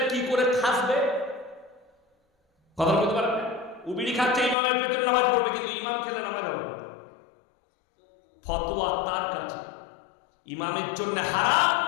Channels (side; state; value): right; drops out; at 4.5 s